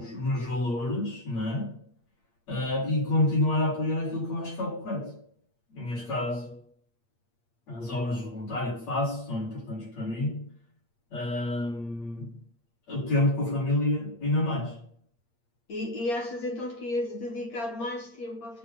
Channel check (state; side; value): late; right; 8.6 ms